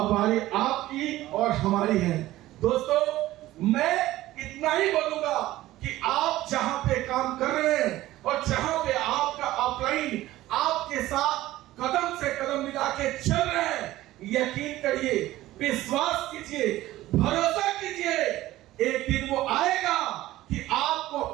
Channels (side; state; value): left; quieter; 16.0 dB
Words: बारी आपकी और हमारी है। दोस्तों मैं इतना ही बोलूंगा कि आप जहां पे काम कर रहे हैं और जहां पे आपका अपलाइन आपके साथ कदम से कदम मिला के चल रहे हैं, यकीन करिए, विश्वास कीजिए, भरोसा कीजिए, एक दिन वो आएगा कि आपको